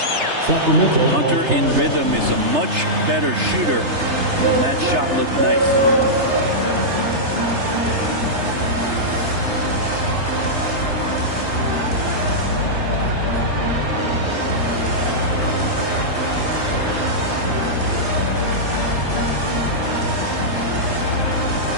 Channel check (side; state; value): left; late; 3.3 ms